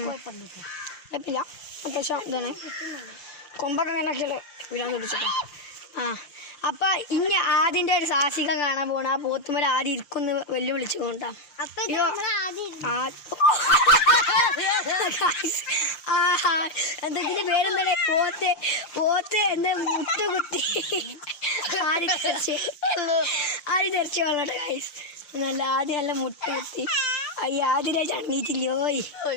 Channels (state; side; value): late; right; 5.8 ms